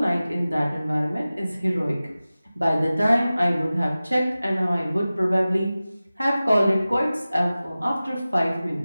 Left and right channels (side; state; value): both; inverted; correlation -0.96